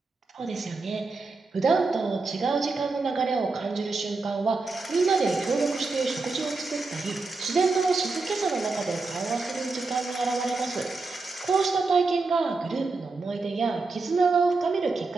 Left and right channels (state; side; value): quieter; left; 3.8 dB